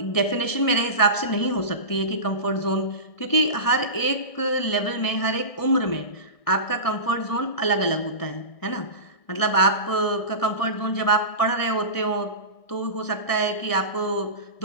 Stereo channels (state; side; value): late; right; 1.6 ms